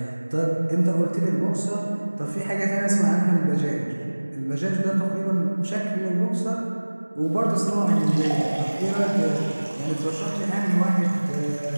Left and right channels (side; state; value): both; inverted; correlation -1.00